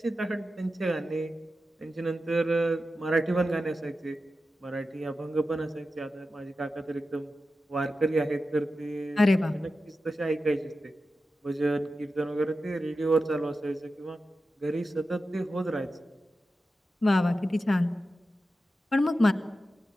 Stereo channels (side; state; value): both; normal; correlation 0.92